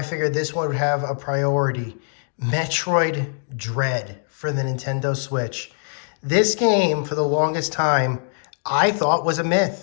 figured this one would have a priority. Metroid Dread for the Nintendo Switch. This game, for the longest time, I thought was a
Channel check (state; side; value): silent; right; digital silence